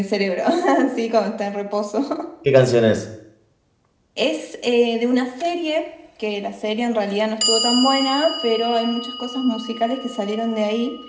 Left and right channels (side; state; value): both; identical; correlation 1.00